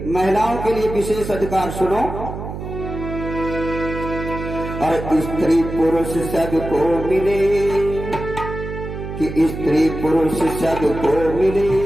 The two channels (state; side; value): noise; right; hum, 8 dB below the sound